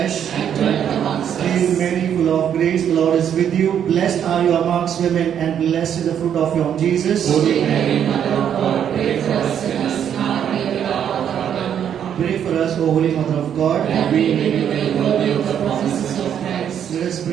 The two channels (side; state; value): left; quieter; 9.0 dB